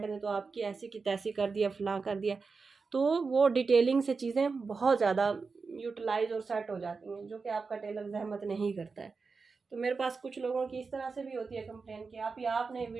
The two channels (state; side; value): quieter; left; 4.6 dB